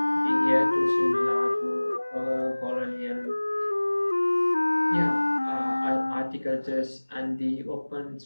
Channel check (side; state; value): both; inverted; correlation -1.00